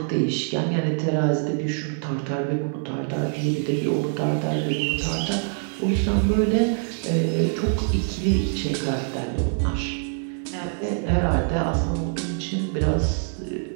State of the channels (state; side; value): silent; left; 62 dB below the other